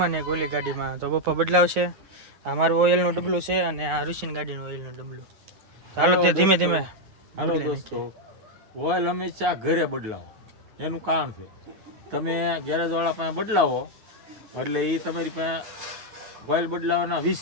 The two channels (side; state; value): left; late; 9.5 ms